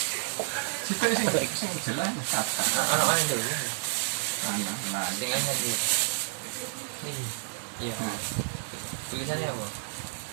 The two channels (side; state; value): left; silent; digital silence